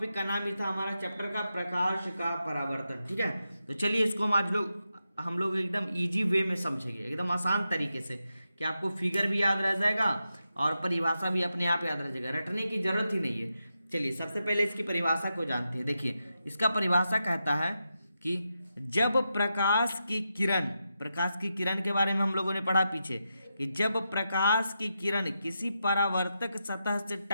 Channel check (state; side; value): inverted; both; correlation -0.87